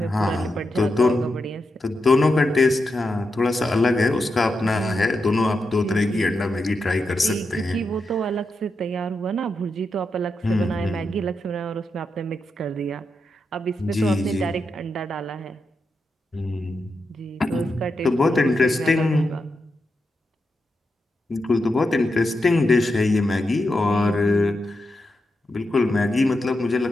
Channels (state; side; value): normal; both; correlation 0.87